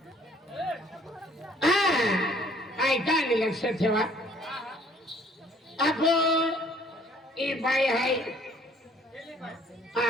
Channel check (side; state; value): both; normal; correlation 0.59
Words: ऐका आणि लक्षात ठेवा. आपण ही बाई आहे